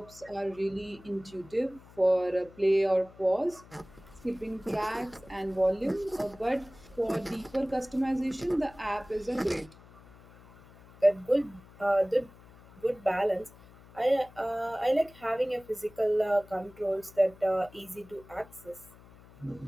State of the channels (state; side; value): noise; left; hum, 22 dB below the sound